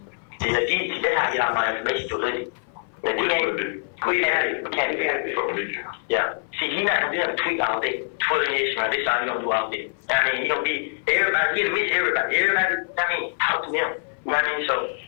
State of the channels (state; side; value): silent; right; 59 dB below the other